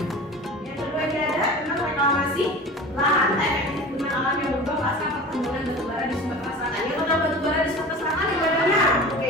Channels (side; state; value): both; normal; correlation 0.36